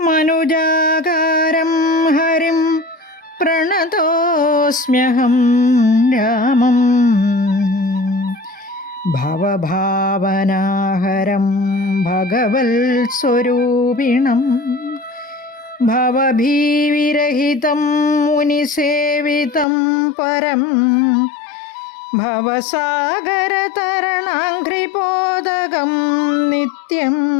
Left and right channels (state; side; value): drops out; right; at 19.7 s